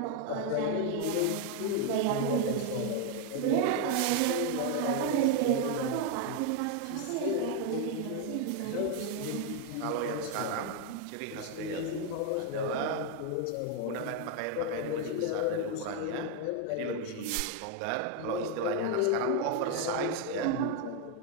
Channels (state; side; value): different; both; correlation 0.01